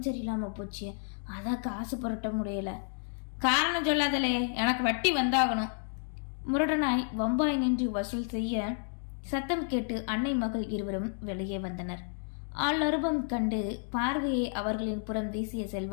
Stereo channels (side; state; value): right; silent; 57 dB below the other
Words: சரியில்லாமல் போச்சு, அதான் காசு புரட்ட முடியல. காரணம் சொல்லாதலே, எனக்கு வட்டி வந்தாகணும். முரடனாய் வம்பாய் நின்று வசூல் செய்ய சத்தம் கேட்டு அன்னை மகள் இருவரும் வெளியே வந்தனர். ஆளருபம் கண்டு பார்வையை அவர்களின் புறம் வீசிய